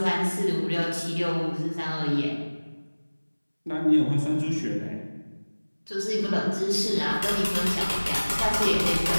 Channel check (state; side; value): inverted; both; correlation -1.00